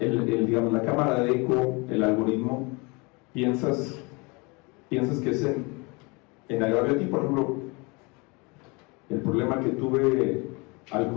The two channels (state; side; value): quieter; right; 28.3 dB